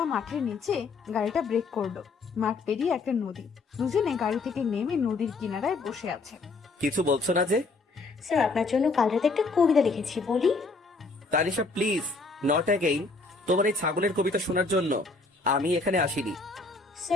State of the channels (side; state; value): right; quieter; 3.8 dB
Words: মাঠের নিচে গাড়িটা ব্রেক করলো। মাঠ পেরিয়ে একটা নদী। দুজনে গাড়ি থেকে নেমে নদীর কিনারায় বসে আছে। কিছু বলছো না যে? স্যার আপনার জন্য কাল রাতে একটা কবিতা লিখেছি, বলি? Tanisha please, not again. তোমার এই ছাগলের কবিতা শোনার জন্য আমি এখানে আসিনি।